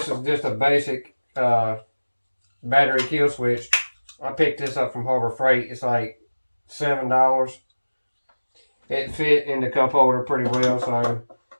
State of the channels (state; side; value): inverted; both; correlation -1.00